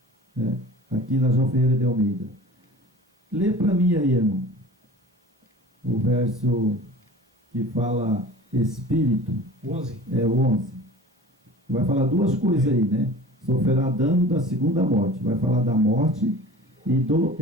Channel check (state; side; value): normal; both; correlation 0.40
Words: Né? Aqui na João Ferreira de Almeida. Lê para mim aí, irmão. O verso que fala Espírito. 11. É o 11. Vai falar duas coisas aí, né? Sofrerá dano da segunda morte. Vai falar da morte e do